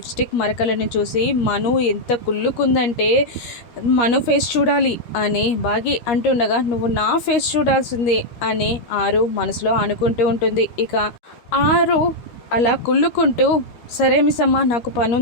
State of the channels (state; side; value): late; right; 13 ms